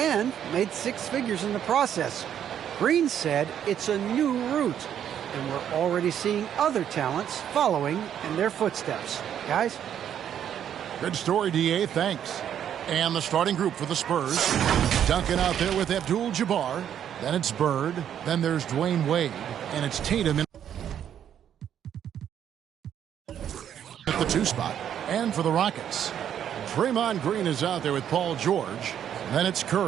made 6 figures in the process. Green said it's a new route, and we're already seeing other talents following in their footsteps. Guys? Good story, D.A. Thanks. And the starting group for the Spurs. Duncan out there with Abdul-Jabbar. Then it's Bird. Then there's Dwayne Wade. And it's Tatum at the 2 spot. And for the Rockets, Draymond Green is out there with Paul George. Then it's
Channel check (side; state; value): left; quieter; 9.6 dB